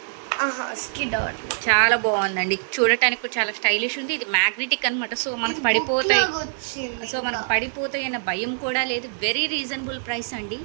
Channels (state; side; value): silent; left; digital silence